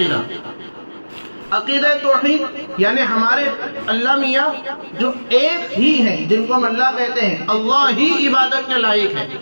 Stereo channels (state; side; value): inverted; both; correlation -1.00